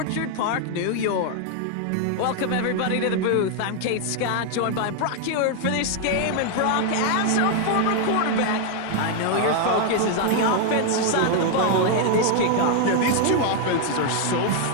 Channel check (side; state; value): both; different; correlation 0.00